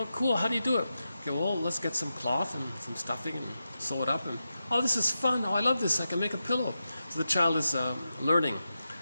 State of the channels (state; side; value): inverted; both; correlation -0.89